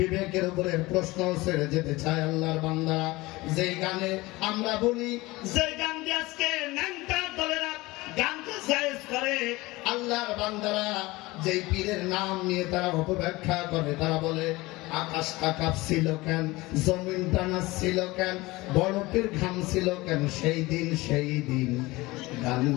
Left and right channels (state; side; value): quieter; right; 21.0 dB